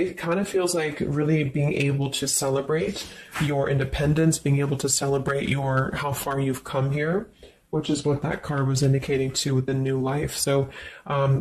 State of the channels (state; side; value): identical; both; correlation 1.00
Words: kind of feels like really being able to celebrate your independence, being able to celebrate how far you've come here, which is what that card was indicating too with the new life. So